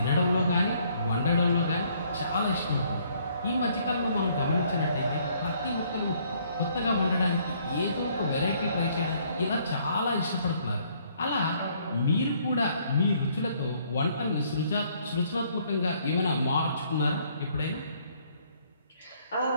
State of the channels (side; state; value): both; inverted; correlation -0.65